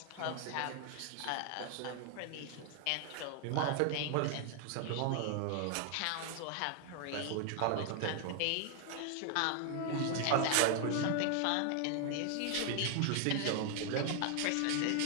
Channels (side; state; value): both; different; correlation 0.00